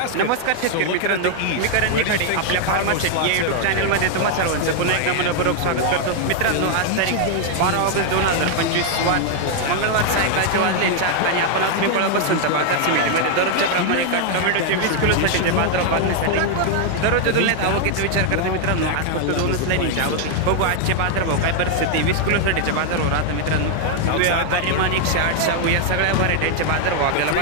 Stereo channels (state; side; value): different; both; correlation 0.00